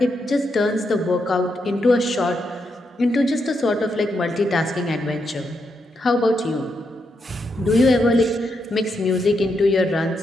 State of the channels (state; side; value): normal; both; correlation 0.81